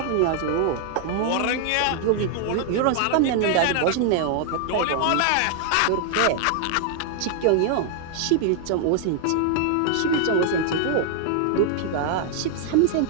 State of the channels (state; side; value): different; both; correlation 0.00